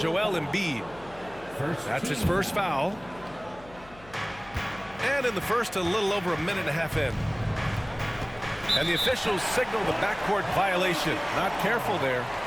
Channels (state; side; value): noise; left; hum, 21 dB below the sound